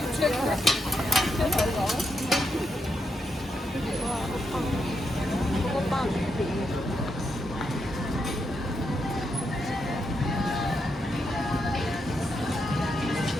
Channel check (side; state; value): both; normal; correlation 0.82